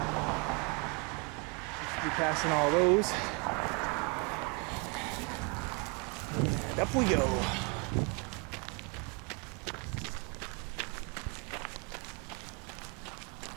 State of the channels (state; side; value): quieter; left; 32.2 dB